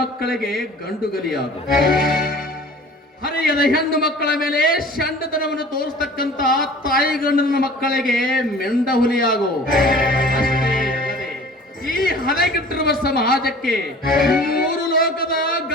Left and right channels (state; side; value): normal; both; correlation 0.45